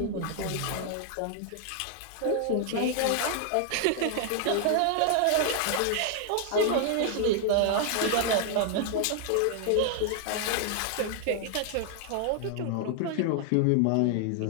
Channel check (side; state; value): both; different; correlation 0.00